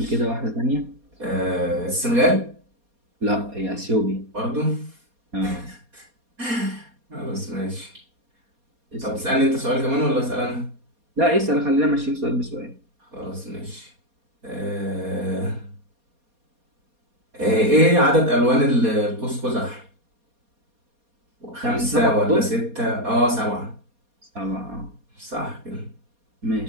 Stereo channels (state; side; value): late; left; 4.2 ms